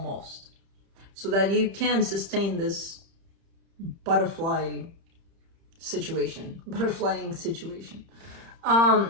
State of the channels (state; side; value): late; left; 30 ms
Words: So that you can sustain this butterflying situation.